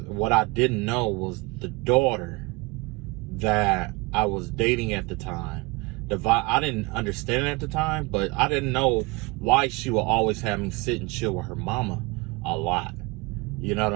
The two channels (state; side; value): quieter; left; 25.0 dB